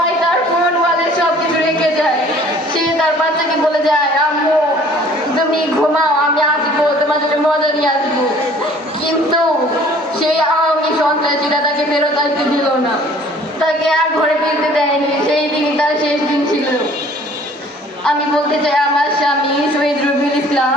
তার ফোন ওয়ালে সব কিছু রেখে যায়। সে তার বাচ্চাকে বলে যায়, আম্মু তুমি ঘুমাও, আমি আসবো, তোমার জন্য মজা নিয়ে আসবো। কিন্তু সেই আওয়ামী সন্ত্রাসীরা তাকে ফেরত আসতে দিল না, তাকে আর ঘরে ফিরতে দেয়নি। সেই দিন তার শেষ দিন ছিল। আমি বলতে চাই, আমার স্বামী শহীদ রবিউল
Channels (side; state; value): both; normal; correlation 0.53